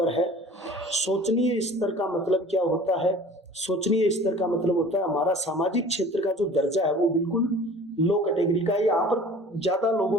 है। सोचनीय स्तर का मतलब क्या होता है? सोचनीय स्तर का मतलब होता है हमारा सामाजिक क्षेत्र का जो दर्जा है वो बिल्कुल लो कैटेगरी का है। यहाँ पर ज्यादा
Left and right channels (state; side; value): normal; both; correlation 0.45